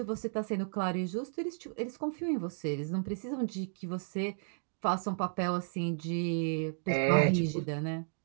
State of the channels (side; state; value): left; silent; digital silence